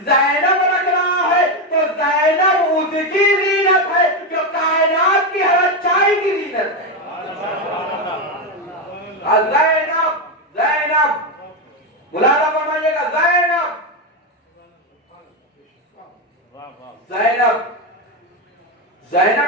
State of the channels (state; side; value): normal; both; correlation 0.09